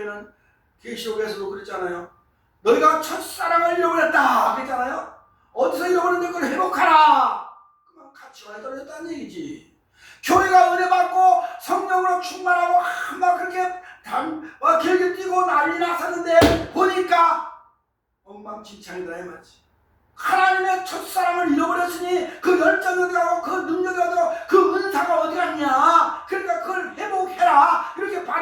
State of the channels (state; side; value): identical; both; correlation 1.00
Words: 계시록에서도 그랬잖아요. 너희가 첫사랑을 잃어버렸다 그랬잖아요. 어디서 잃어버렸는데 그걸 회복하라. 그만 가치관이 떨어졌다는 얘기지. 교회가 은혜 받고 성령으로 충만하고 막 그렇게 길게 뛰고 난리 났었는데 보니까 엉망진창이다 이 말이지. 하나님의 첫사랑을 잃어버렸으니 그 열정이 어디 가고 그 능력이 어디 가고 그 은사가 어디 갔냐. 그러니까 그걸 회복해라. 이렇게